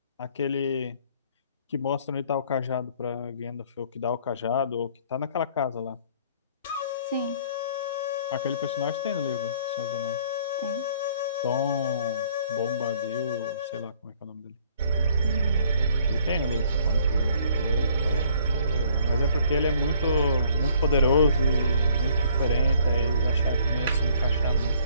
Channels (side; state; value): both; inverted; correlation -0.60